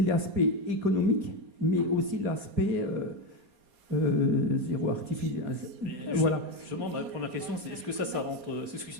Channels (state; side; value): late; left; 4.2 ms